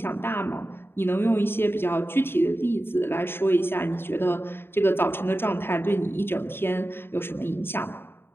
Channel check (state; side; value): late; right; 0.11 ms